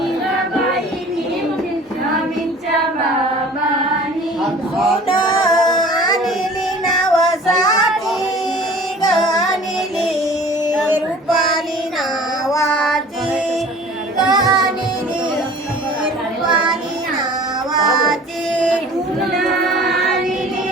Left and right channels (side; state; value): both; normal; correlation 0.46